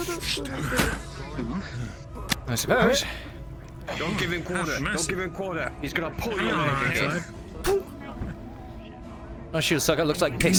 I suppose. Don't give him quarter. Don't give him quarter. He's gonna pull you Alright. My shield sucker looks like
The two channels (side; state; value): both; identical; correlation 1.00